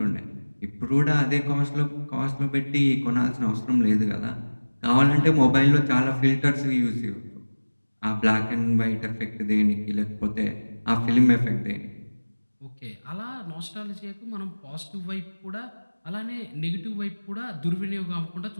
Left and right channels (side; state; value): both; inverted; correlation -1.00